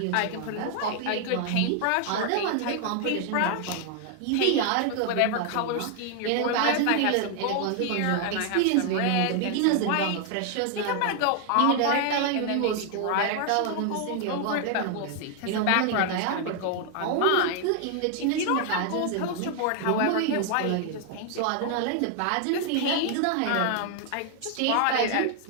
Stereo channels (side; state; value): both; different; correlation 0.00